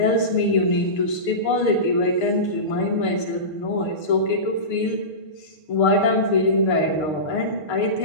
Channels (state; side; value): late; right; 6.7 ms